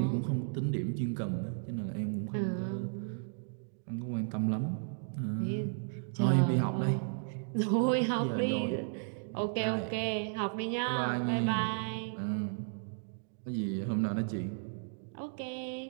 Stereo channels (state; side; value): silent; left; digital silence